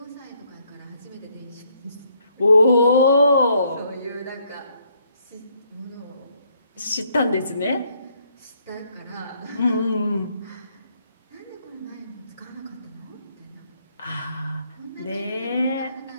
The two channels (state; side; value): inverted; both; correlation -0.70